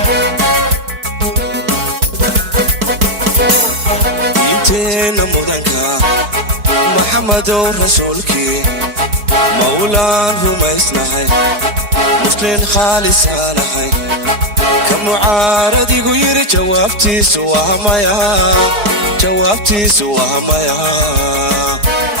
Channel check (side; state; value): left; late; 4.5 ms